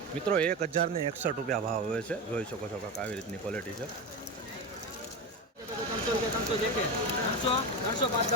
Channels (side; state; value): both; normal; correlation 0.19